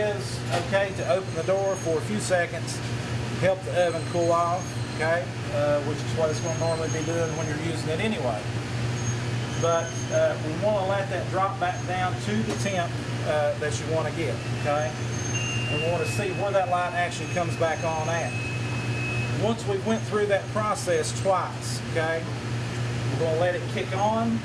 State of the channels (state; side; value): identical; both; correlation 1.00